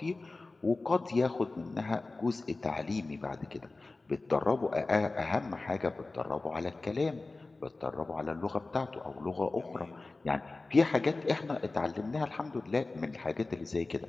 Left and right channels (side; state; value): right; quieter; 3.3 dB